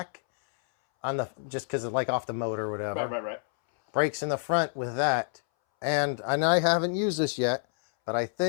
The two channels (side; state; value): right; silent; 59 dB below the other